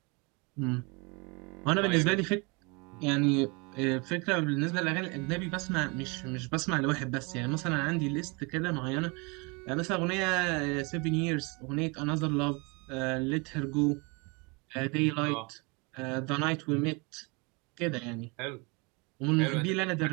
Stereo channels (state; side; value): quieter; left; 29.4 dB